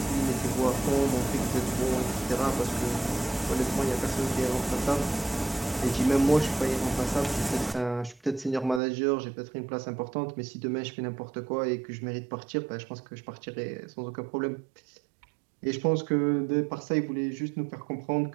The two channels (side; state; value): left; drops out; at 8.8 s